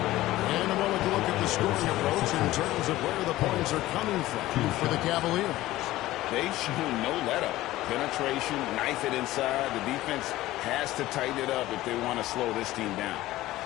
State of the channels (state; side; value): quieter; right; 16.4 dB